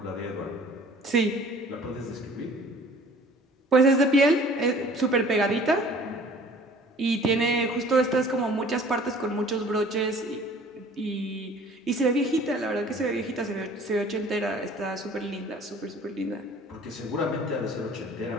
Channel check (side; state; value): both; normal; correlation 0.50